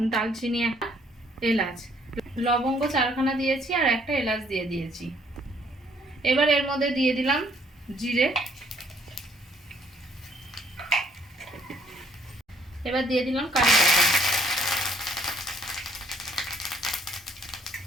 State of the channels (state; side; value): normal; both; correlation 0.65